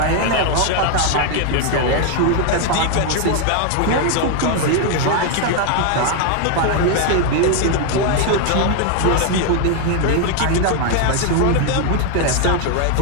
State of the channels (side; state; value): both; different; correlation 0.01